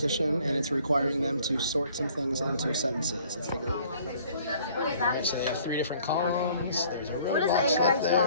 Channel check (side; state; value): both; inverted; correlation -0.56